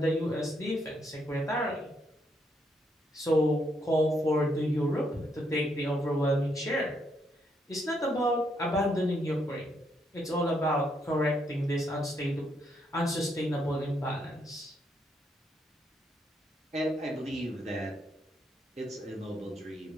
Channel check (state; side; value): normal; both; correlation 0.76